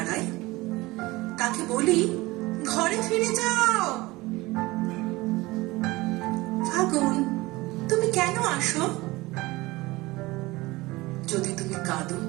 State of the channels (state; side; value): quieter; left; 20.8 dB